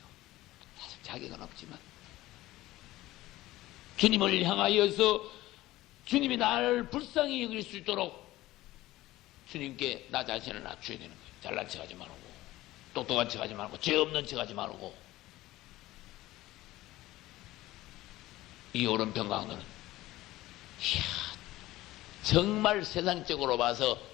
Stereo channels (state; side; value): quieter; right; 16.9 dB